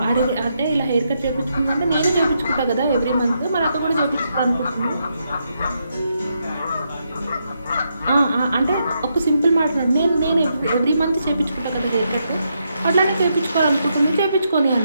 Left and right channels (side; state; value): both; inverted; correlation -0.80